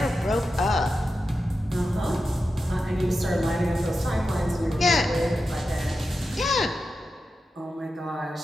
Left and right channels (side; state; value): both; normal; correlation 0.90